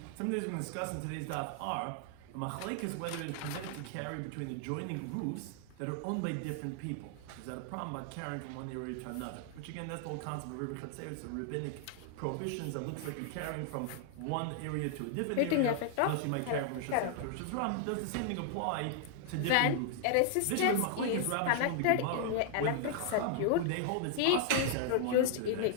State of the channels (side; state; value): both; different; correlation -0.01